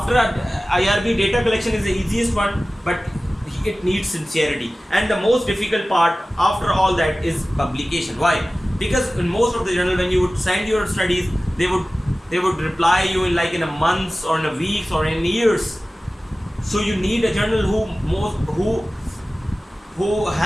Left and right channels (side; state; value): both; normal; correlation 0.97